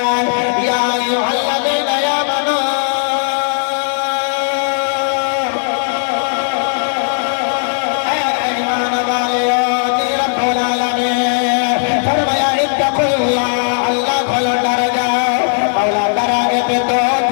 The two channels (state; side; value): silent; right; digital silence